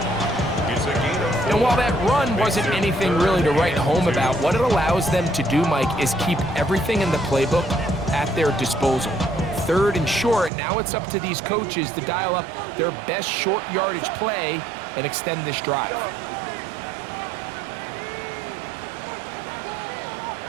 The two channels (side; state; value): left; drops out; at 10.5 s